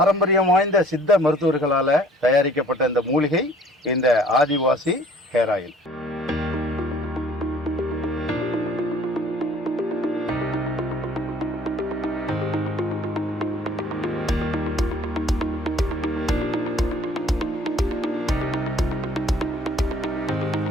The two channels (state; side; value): normal; both; correlation 0.55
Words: வாய்ந்த சித்த மருத்துவர்களால தயாரிக்கப்பட்ட இந்த மூலிகை இந்த ஆதிவாசி ஹேர் ஆயில்.